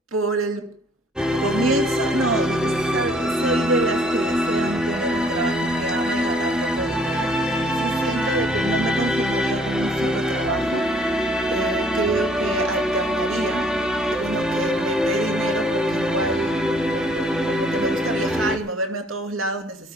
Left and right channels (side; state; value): both; normal; correlation 0.60